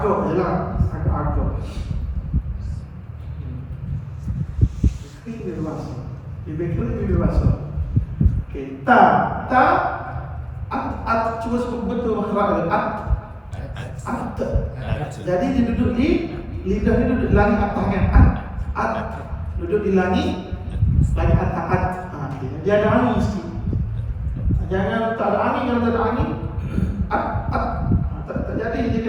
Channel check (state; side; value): identical; both; correlation 1.00